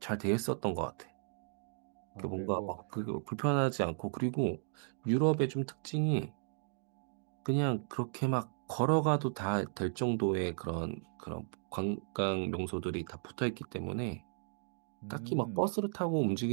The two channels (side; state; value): left; silent; digital silence